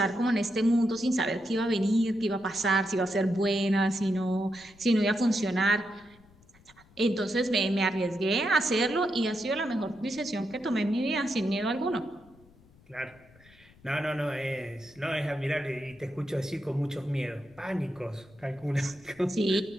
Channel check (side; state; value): left; noise; rumble, 27 dB below the sound